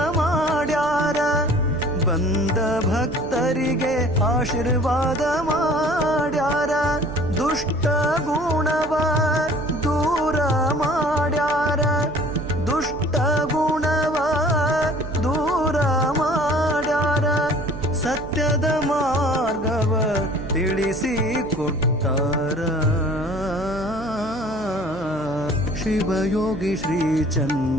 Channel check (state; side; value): noise; right; hum, 14 dB below the sound